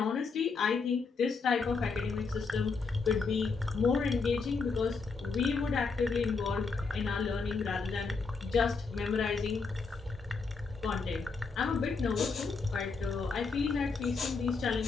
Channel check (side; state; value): right; quieter; 4.6 dB